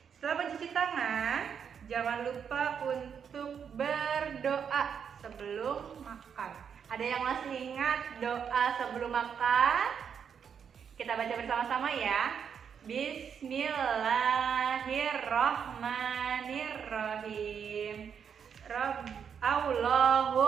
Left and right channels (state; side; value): quieter; left; 7.3 dB